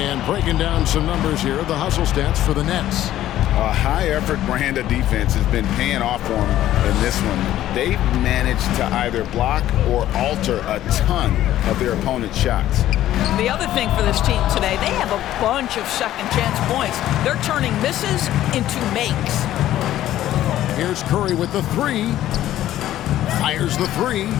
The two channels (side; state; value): right; quieter; 13.2 dB